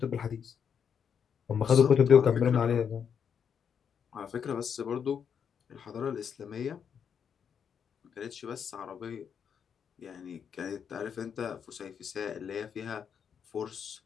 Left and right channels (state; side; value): quieter; right; 7.4 dB